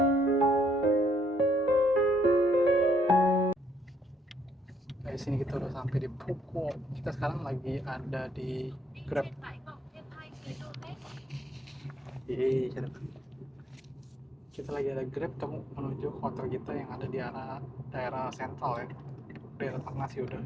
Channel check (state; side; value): normal; both; correlation 0.70